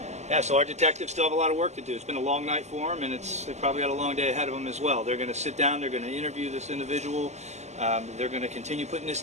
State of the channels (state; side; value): late; left; 0.33 ms